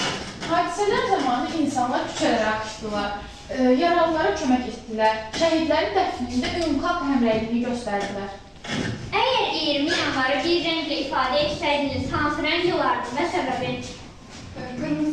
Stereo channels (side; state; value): both; identical; correlation 1.00